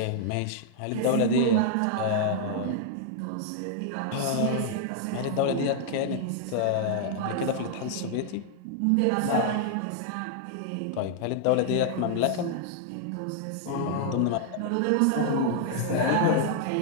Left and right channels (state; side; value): different; both; correlation -0.01